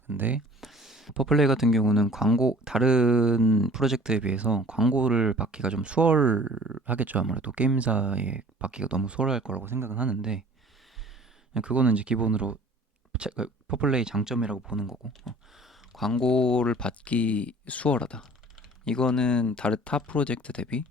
근데 퍼플레이 같은 경우는 다른 프로젝트에 비해서 광고를 받기가 좀 수월하겠죠. 아무래도 게임사에 받기가 너무 수월할 거라고 생각은 하는데, 그거는 이제 기본으로 퍼플레이 장점이라고 보는 거고, 광고를 받기 수월하다, 이거는 다른 타 프로젝트 대비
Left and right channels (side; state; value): both; normal; correlation 0.48